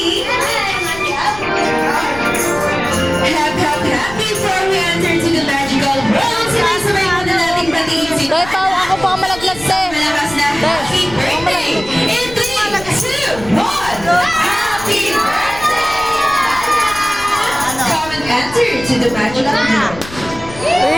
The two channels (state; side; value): noise; left; rumble, 15 dB below the sound